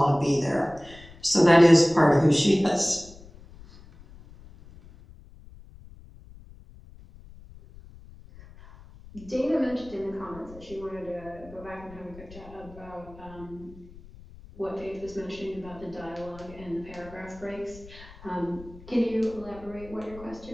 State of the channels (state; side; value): noise; left; rumble, 20 dB below the sound